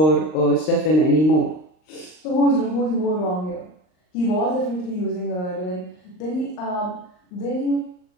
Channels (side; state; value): right; late; 39 ms